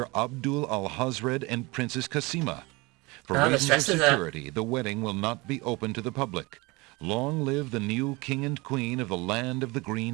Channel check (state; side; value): quieter; left; 24.6 dB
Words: Abdul al-Hazred and Princess Kasima. For reasons of security, the wedding will not be open to the public. Long live the new king and queen of the land of the